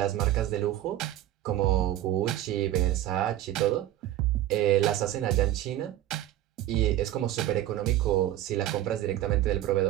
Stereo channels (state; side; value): quieter; left; 13.6 dB